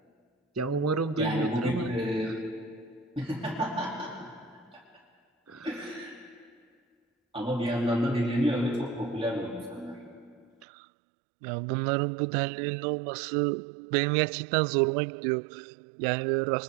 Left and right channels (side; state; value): left; drops out; at 10.7 s